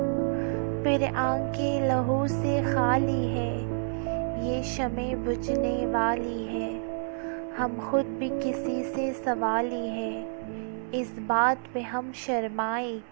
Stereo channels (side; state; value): left; silent; 59 dB below the other